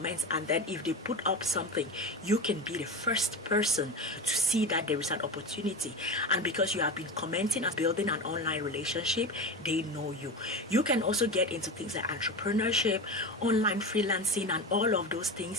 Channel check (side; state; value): both; normal; correlation 0.25